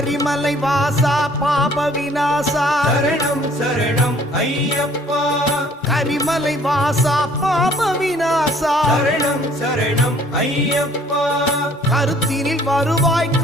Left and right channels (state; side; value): normal; both; correlation 0.57